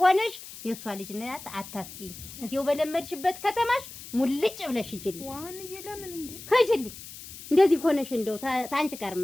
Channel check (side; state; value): left; noise; hiss, 14 dB below the sound